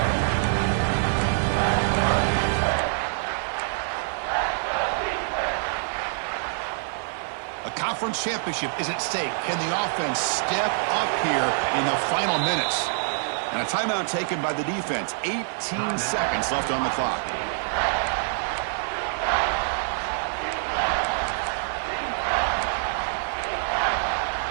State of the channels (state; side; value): silent; left; digital silence